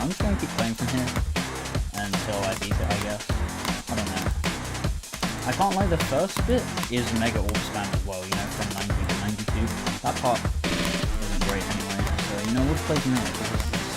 I'm just gonna keep playing from here until I beat it, I guess. I don't know. I can't lie, the first bit is mega orb spam as well, from 90 to 92. That part isn't great anyway, so we'll play from here because this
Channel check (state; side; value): identical; both; correlation 1.00